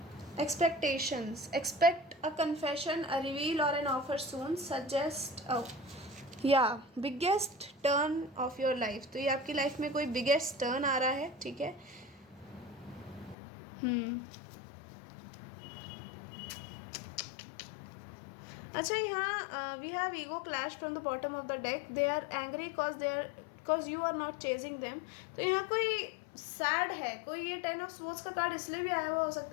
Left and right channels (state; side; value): drops out; right; at 13.4 s